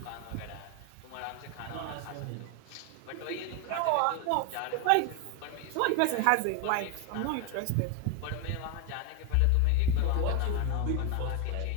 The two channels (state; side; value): different; both; correlation 0.01